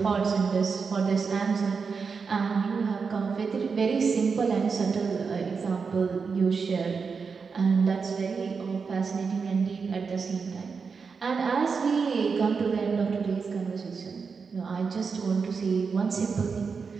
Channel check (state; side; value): quieter; left; 5.3 dB